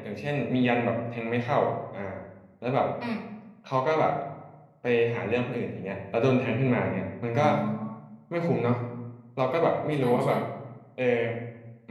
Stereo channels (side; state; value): both; identical; correlation 1.00